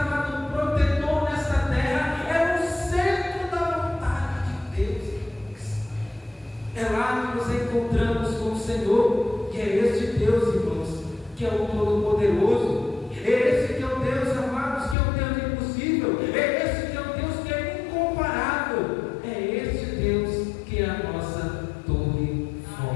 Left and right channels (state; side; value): drops out; right; at 15.0 s